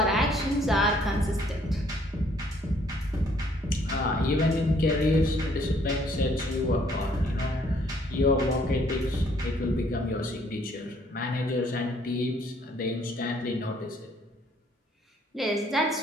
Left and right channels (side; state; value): both; normal; correlation 0.64